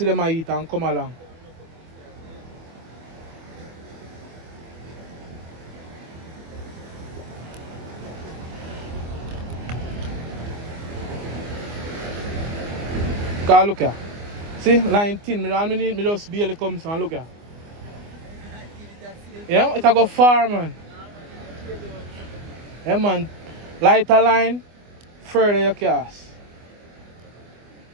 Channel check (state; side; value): late; left; 24 ms